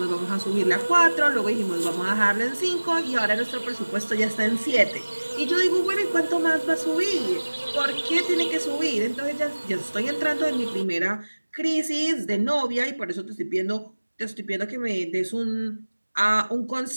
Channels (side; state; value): both; inverted; correlation -1.00